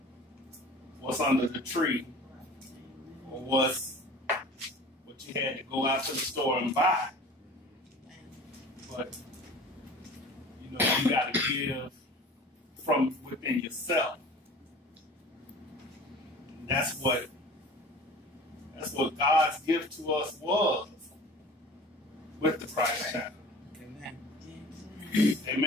what's under the tree or what you had to go out to the store and buy. But you know, you got to give from within yourself. And that's what God's gift to us was with the Christ child. Amen.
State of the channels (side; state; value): both; normal; correlation 0.42